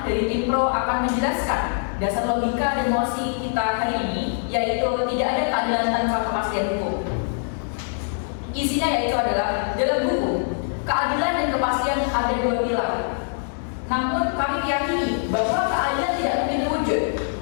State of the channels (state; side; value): silent; right; digital silence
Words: dari tim pro akan menjelaskan dasar logika dan mosi kita hari ini, yaitu tidak ada keadilan tanpa kepastian hukum. Isinya yaitu adalah, dalam hukum, keadilan dan kepastian ada 2 pilar. Namun kami meyakini bahwa keadilan tidak mungkin terwujud